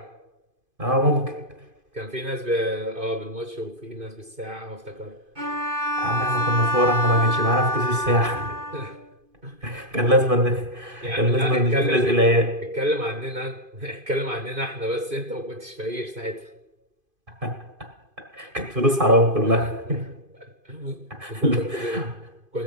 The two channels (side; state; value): left; late; 2.5 ms